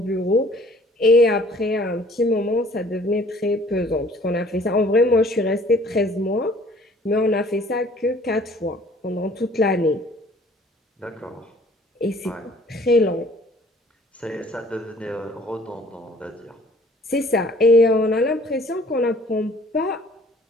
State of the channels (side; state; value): both; normal; correlation 0.55